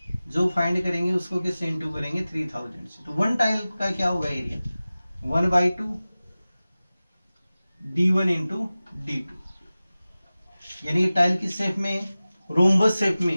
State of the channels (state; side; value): inverted; both; correlation -0.97